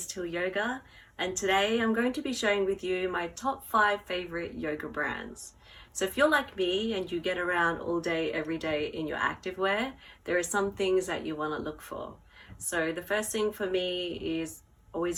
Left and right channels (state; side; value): identical; both; correlation 1.00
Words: Till Yoga, and today I'm going to be sharing with you my top 5 favorite yoga brands. So if you're like me and you get around all day every day in your activewear, there are some things that you want to look for. So the first thing for me is